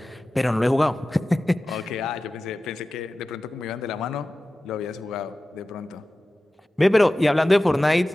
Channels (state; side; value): normal; both; correlation 0.95